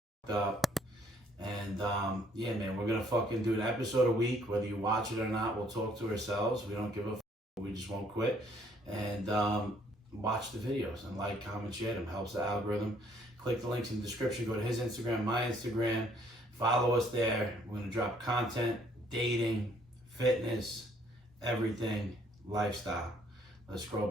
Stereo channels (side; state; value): both; normal; correlation 0.64